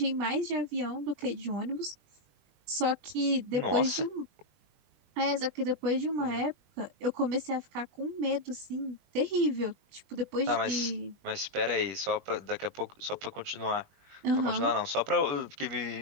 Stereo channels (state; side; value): late; left; 21 ms